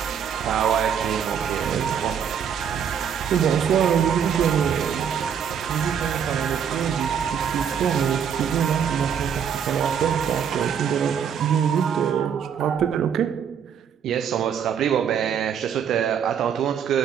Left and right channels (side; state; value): left; quieter; 8.0 dB